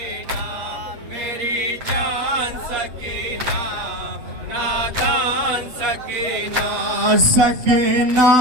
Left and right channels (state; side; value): late; left; 8.1 ms